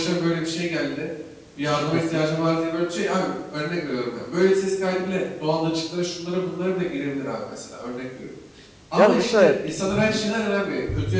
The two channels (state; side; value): identical; both; correlation 1.00